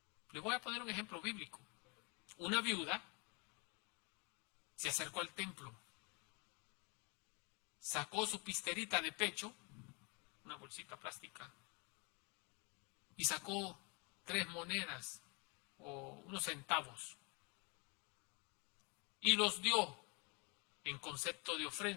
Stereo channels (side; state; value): right; quieter; 31.9 dB